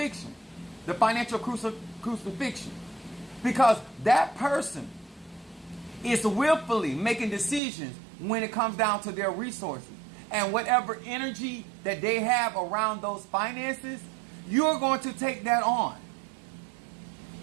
the financial crucifixion. Because that person is willfully making decisions when it comes down to their resources. And whatever energy that they have around those finances, you're going to take that on.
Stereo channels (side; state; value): left; drops out; at 7.6 s